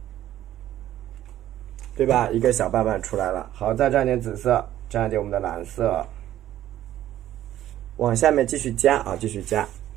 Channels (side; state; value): left; quieter; 12.8 dB